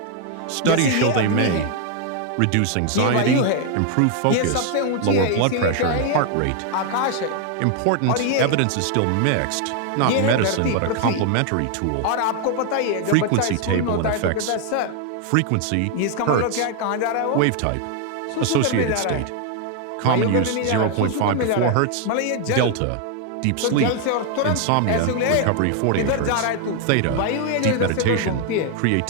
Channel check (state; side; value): different; both; correlation 0.00